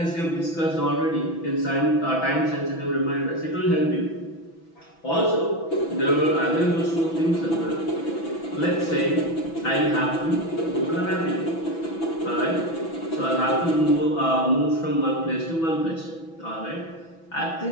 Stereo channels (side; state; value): right; late; 6.1 ms